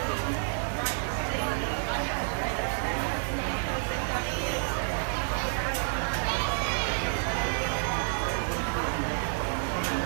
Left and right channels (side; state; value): left; silent; digital silence